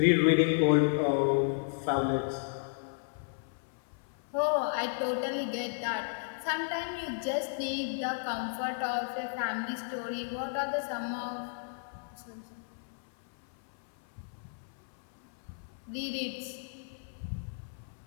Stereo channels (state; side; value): silent; right; 56 dB below the other